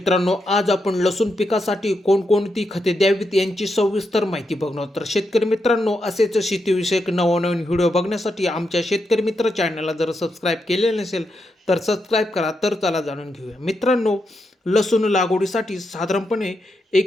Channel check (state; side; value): normal; both; correlation 0.84